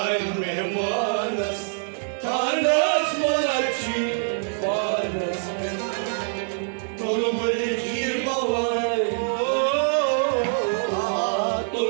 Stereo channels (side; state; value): left; silent; digital silence